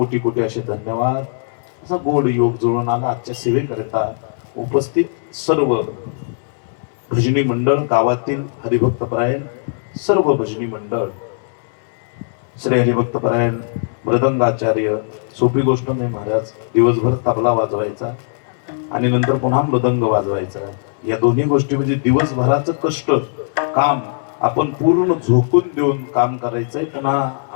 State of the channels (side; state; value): right; silent; 67 dB below the other